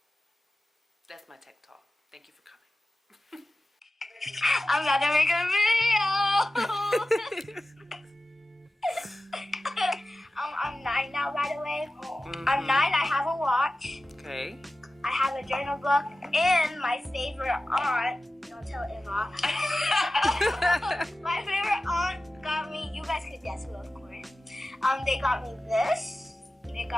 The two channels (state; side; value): normal; both; correlation 0.95